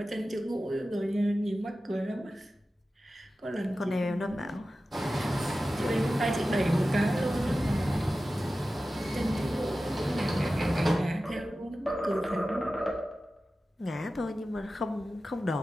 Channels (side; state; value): both; normal; correlation 0.94